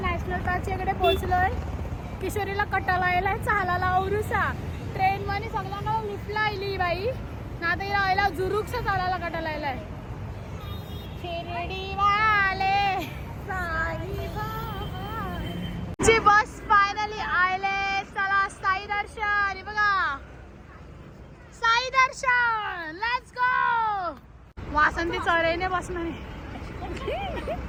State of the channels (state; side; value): identical; both; correlation 1.00